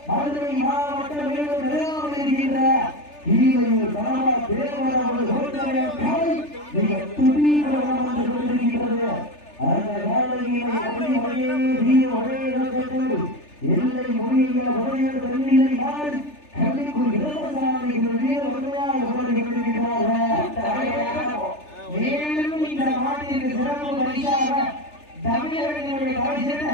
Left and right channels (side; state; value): right; late; 3.4 ms